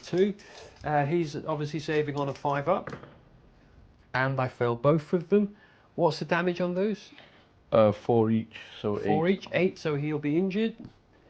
He's obviously saving on a 5 up, and I failed both of them. What's the damage on those? 4 each, so 8. 4 each, 8, so he'll be injured,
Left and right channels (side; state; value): both; identical; correlation 1.00